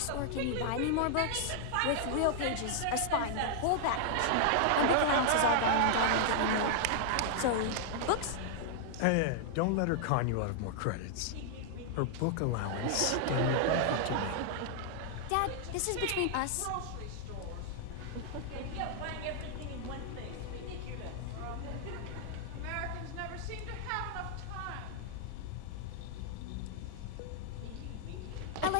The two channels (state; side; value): different; both; correlation -0.01